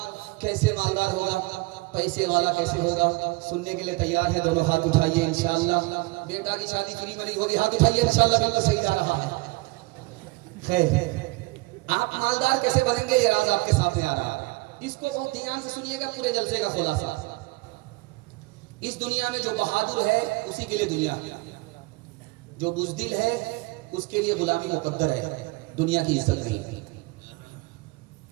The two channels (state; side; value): quieter; left; 23.9 dB